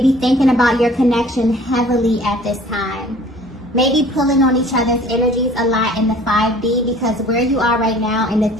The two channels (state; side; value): normal; both; correlation 0.50